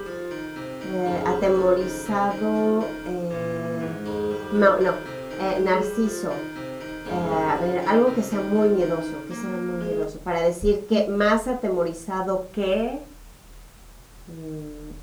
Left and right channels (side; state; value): both; identical; correlation 1.00